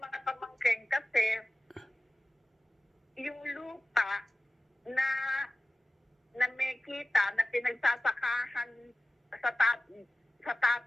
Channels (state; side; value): normal; both; correlation 0.96